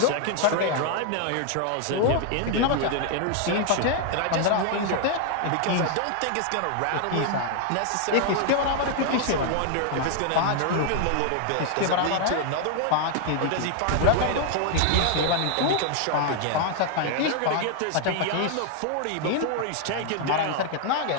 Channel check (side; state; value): both; different; correlation 0.00